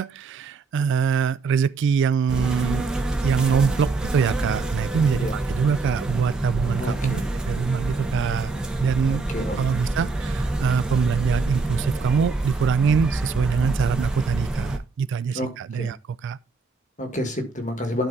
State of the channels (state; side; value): quieter; left; 4.5 dB